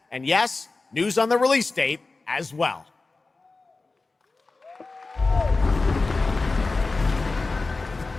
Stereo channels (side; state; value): right; quieter; 3.6 dB